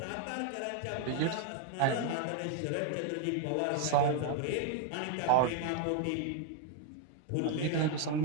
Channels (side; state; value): both; different; correlation 0.01